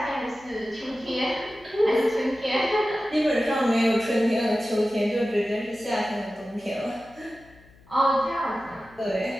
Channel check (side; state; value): left; noise; hum, 26 dB below the sound